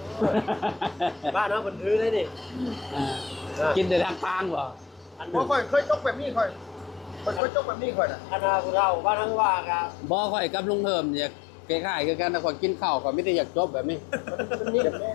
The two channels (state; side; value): drops out; right; at 7.4 s